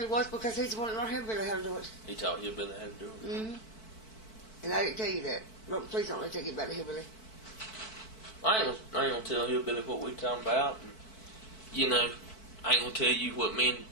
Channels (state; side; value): late; right; 4.5 ms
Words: was because he's the one that learned Hillbilly how to do it. He taught Hillbilly how to do it. Mm-hmm. And I didn't tell you that. No, please don't let me tell you about the Hillbilly. I ain't gonna tell Hillbilly what we talking about. And, you know, I ain't gonna tell you what me and